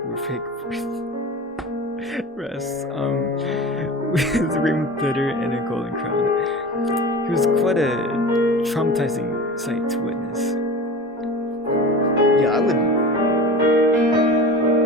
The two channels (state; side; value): normal; both; correlation 0.33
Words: were fake breasts, with ring glitter and a golden crown. He was quite a traumatizing sight to witness. Yeah, I